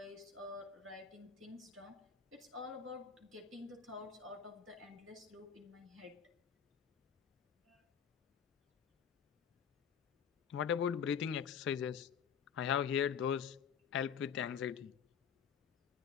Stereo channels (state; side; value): quieter; right; 7.6 dB